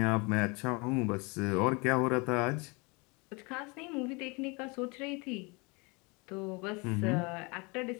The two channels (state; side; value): quieter; right; 28.8 dB